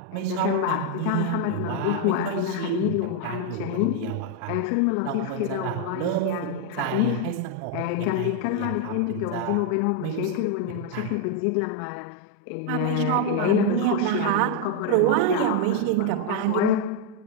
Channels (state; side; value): different; both; correlation 0.00